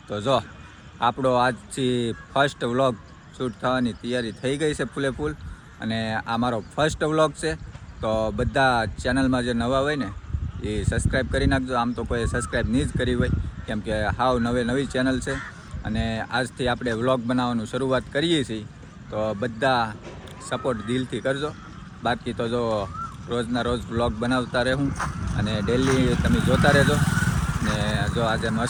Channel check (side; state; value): both; identical; correlation 1.00